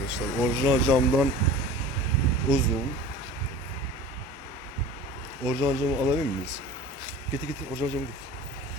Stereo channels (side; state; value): both; normal; correlation 0.39